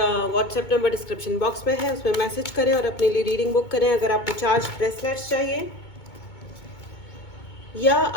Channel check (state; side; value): late; right; 2.2 ms